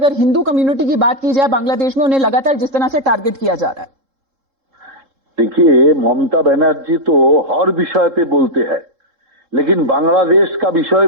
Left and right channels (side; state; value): left; late; 3.7 ms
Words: हिंदू कम्युनिटी की बात की जाए बांग्लादेश में, उन्हें लगातार जिस तरह से टारगेट किया जा रहा है. देखिए, ममता बनर्जी तो हर विषय पे बोलते हैं, लेकिन बांग्लादेश का विषय